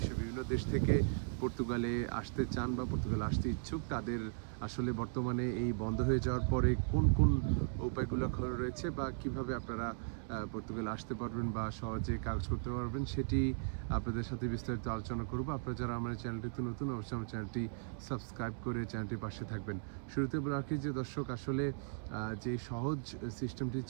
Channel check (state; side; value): silent; left; digital silence